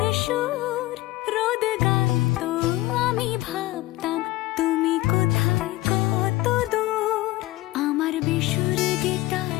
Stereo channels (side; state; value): right; quieter; 18.0 dB